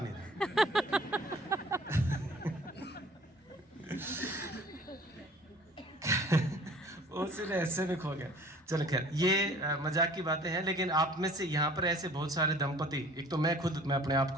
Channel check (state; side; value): normal; both; correlation 0.51